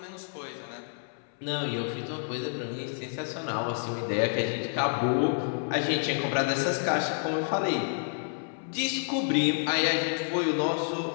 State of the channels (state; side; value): silent; right; 58 dB below the other